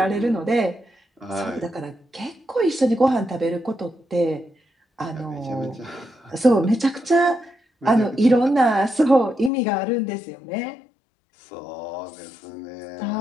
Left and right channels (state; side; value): drops out; right; at 9.5 s